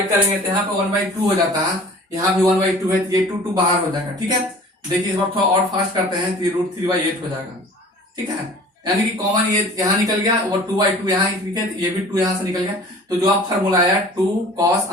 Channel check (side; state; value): both; normal; correlation 0.45